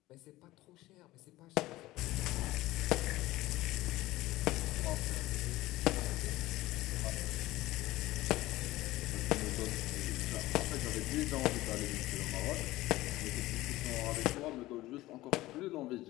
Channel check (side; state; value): right; quieter; 17.6 dB